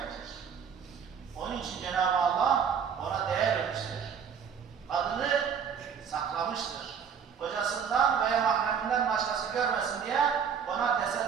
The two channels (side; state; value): left; quieter; 7.2 dB